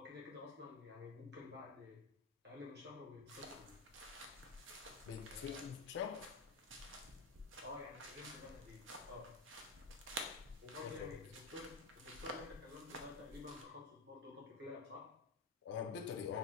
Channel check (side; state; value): right; quieter; 3.8 dB